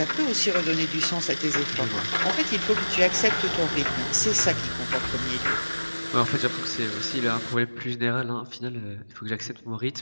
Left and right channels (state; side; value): inverted; both; correlation -1.00